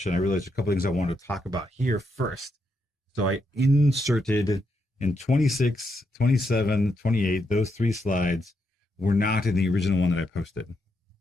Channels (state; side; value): normal; both; correlation 0.80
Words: I realized a couple things I wanted to talk about here first. So I inserted in 26, 27, 28, those 3 slides were not in the original one that I posted.